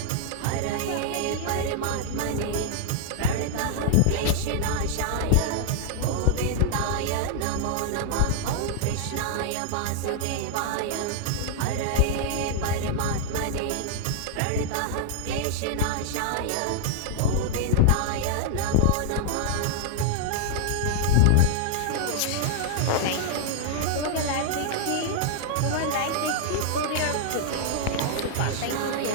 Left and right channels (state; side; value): different; both; correlation -0.01